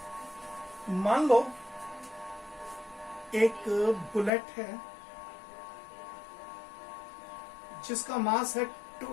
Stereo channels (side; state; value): right; drops out; at 4.3 s